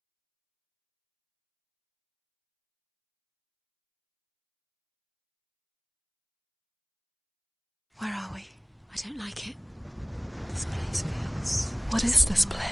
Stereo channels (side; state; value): both; identical; correlation 1.00